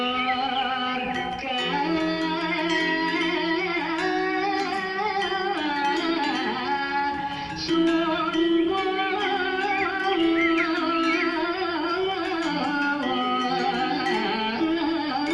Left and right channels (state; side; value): identical; both; correlation 1.00